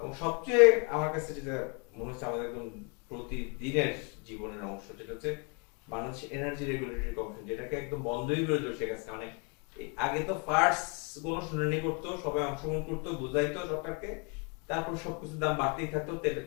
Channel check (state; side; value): quieter; right; 34.6 dB